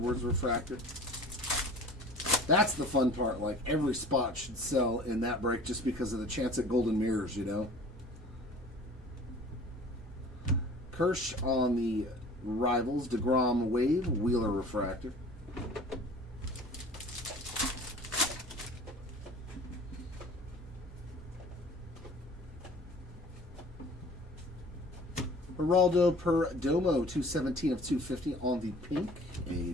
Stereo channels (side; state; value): both; normal; correlation 0.46